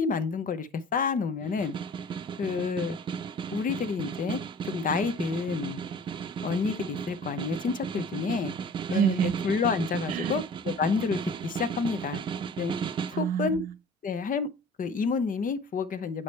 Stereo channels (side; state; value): both; normal; correlation 0.46